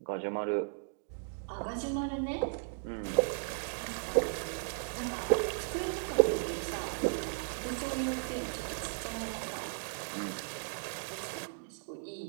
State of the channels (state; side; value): silent; left; digital silence